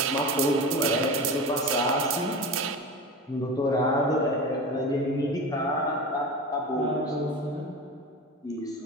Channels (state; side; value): normal; both; correlation 0.29